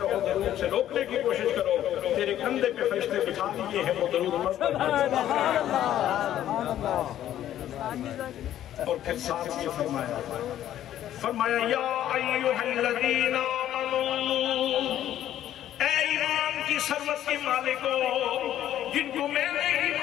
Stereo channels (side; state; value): right; quieter; 11.9 dB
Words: درود سے روکنے کی کوشش کرو، تیرے کندھے پہ فرشتے بٹھا دیے ہیں وہ درود پڑھتے ہیں۔ اور پھر ساتھ یہ فرمایا یا ایھا الذین آمنوا، اے ایمان کی ثروت کے مالکو، جن کو میں نے